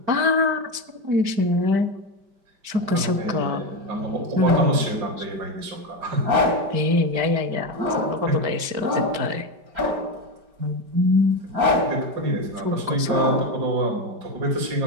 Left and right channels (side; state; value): left; late; 5.1 ms